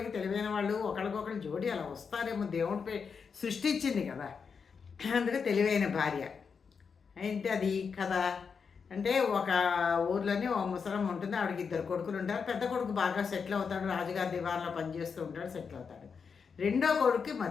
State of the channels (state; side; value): quieter; right; 5.9 dB